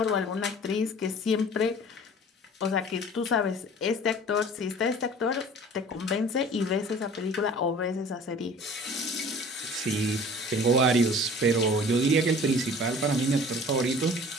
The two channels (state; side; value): normal; both; correlation 0.46